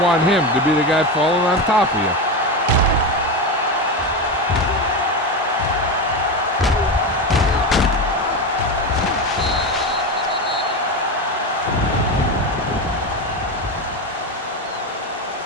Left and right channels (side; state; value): both; normal; correlation 0.17